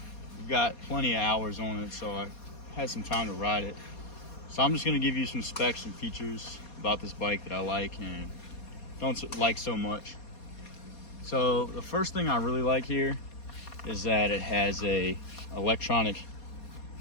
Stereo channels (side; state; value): right; late; 4.2 ms